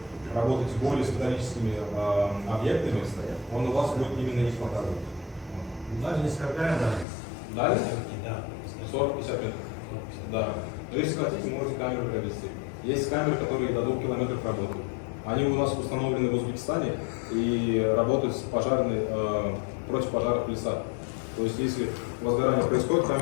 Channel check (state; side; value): drops out; right; at 7.1 s